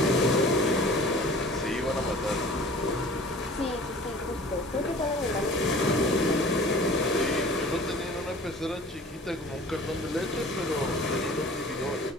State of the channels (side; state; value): both; normal; correlation 0.45